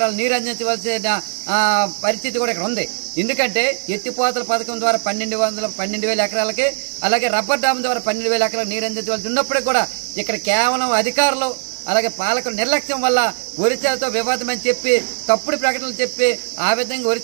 నీరు అందించవలసిన పరిస్థితి కూడా ఇక్కడ ఉంది. ఎందుకంటే ఎత్తిపోతల పథకం ద్వారా 12,000 ఎకరాలకి అలాగే రబ్బర్ డ్యామ్ ద్వారా 12,000 ఎకరాలకు నీరు అందించవలసి ఉన్నప్పటికీ కూడా ఇక్కడ కేవలం అధికారులు అలాగే పాలకుల నిర్లక్ష్యం వల్ల ఒరిస్సాతో వివాదం అని చెప్పి తప్పుడు ప్రకటనలు చెప్పి ఆ విధంగా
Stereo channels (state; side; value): silent; left; digital silence